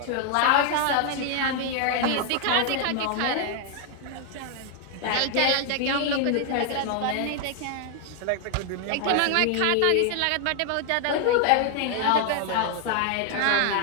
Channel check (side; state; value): both; different; correlation 0.00